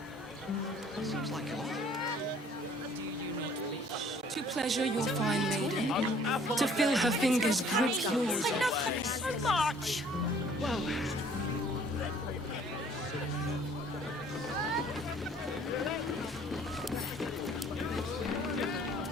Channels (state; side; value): normal; both; correlation 0.56